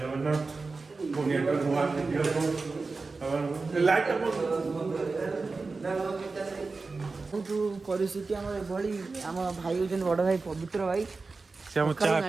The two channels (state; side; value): quieter; left; 4.0 dB